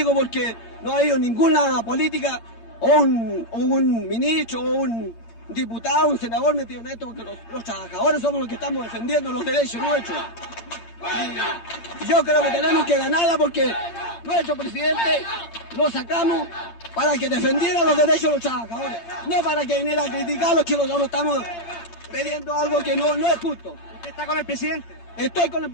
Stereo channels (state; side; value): late; right; 8.7 ms